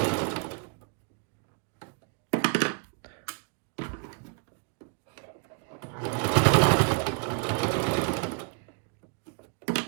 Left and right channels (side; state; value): left; quieter; 38.4 dB